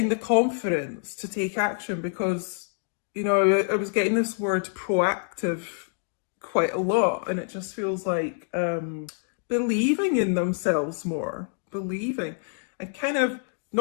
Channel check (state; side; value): silent; right; digital silence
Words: the confidence to take action, because I was getting this word proactive quite a lot, and it just feels like believing in themselves more, believing, and kind of